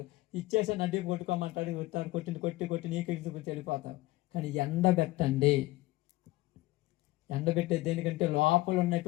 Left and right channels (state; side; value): quieter; right; 18.9 dB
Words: ఇచ్చేసా నడ్డి కొట్టుకోమంటాడు, కొట్టింది కొట్టి నీకు వెళ్ళిపోతావు. కానీ ఎండబెట్టండి. ఎండబెట్టే దేనికంటే లోపల